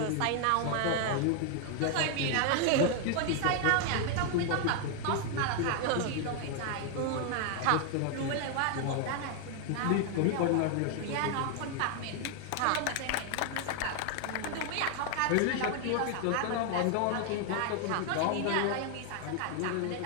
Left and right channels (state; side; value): different; both; correlation 0.00